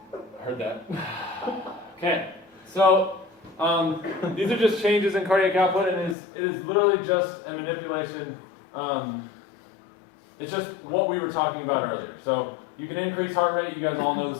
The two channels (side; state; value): right; drops out; at 6.2 s